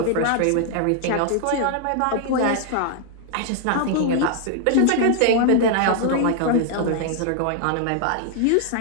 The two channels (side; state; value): both; different; correlation 0.00